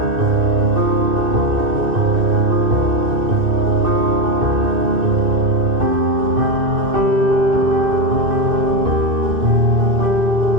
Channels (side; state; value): left; late; 2.6 ms